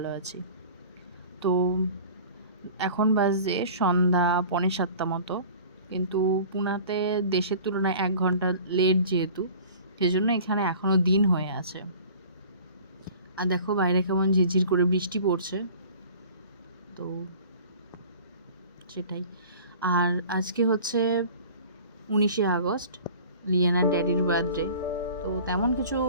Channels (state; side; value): inverted; both; correlation -0.44